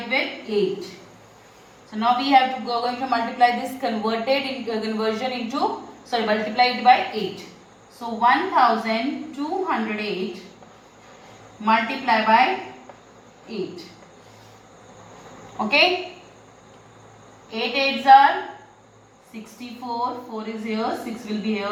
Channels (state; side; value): identical; both; correlation 1.00